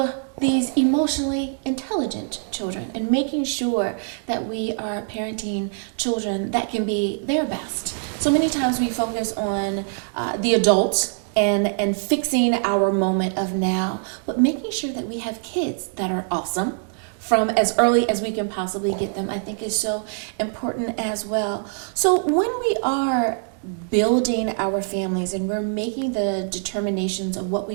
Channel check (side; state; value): left; silent; 63 dB below the other